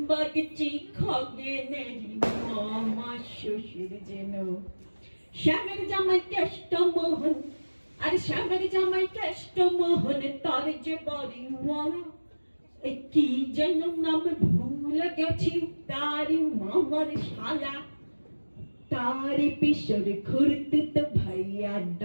খগেনের মামা শ্বশুর যেন। শ্যামের জামাই কেষ্টমোহন, আর শ্যামের জামাই কেষ্টমোহন, তার যে বাড়ি মরা। কি যেন নাম ভুলে গেছি, তারি মামার শালা। তারি পিসর খুরতুত ভাইয়া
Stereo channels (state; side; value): inverted; both; correlation -1.00